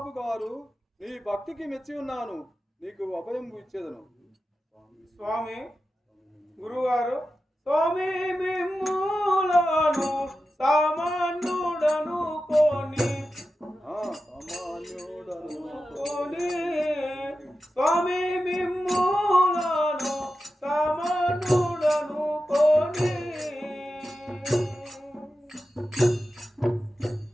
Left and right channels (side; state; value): both; normal; correlation 0.92